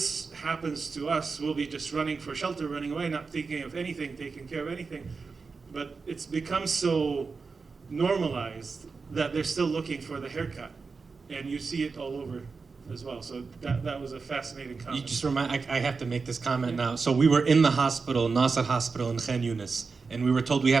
happens to us, we'll be just running for shelter, running away, not thinking of anything, taking care of anything. But it's become so normalized that they're still looking for the haircut. And you see it all over as well. So that was a fascinating comment. You just remind, I have to make this comment now. So we were in the hospital, Nasser Hospital in Khan Yunis, and we were told we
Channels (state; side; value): quieter; left; 4.6 dB